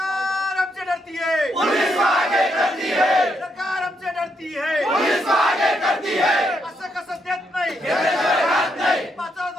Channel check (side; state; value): both; normal; correlation 0.78